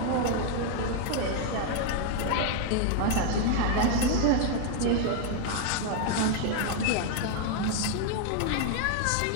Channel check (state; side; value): different; both; correlation 0.00